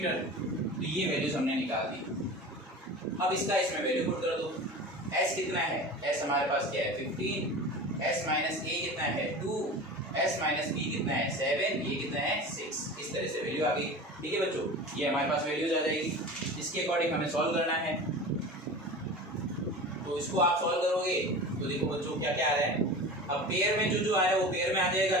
तो ये वैल्यूज हमने निकाल दी। अब इसका इसमें वैल्यू पुट कर दो। s कितना है, s हमारे पास क्या है 15, s माइनस a कितना है 2, s माइनस b कितना है 7, ये कितना है 6। इस तरह से वैल्यू आ गई, ठीक है बच्चों। ये हमारे पास वैल्यूज आ जाएगी। इसके अकॉर्डिंग हमें सॉल्व करना है। तो इसको आप सॉल्व करोगे तो देखो बच्चों क्या क्या आ रहा है। अब पेयर में जो आ रहा है वो पेयर में आ जाएगा,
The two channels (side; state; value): both; normal; correlation 0.33